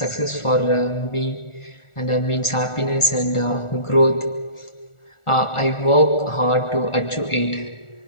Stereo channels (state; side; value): late; right; 1.4 ms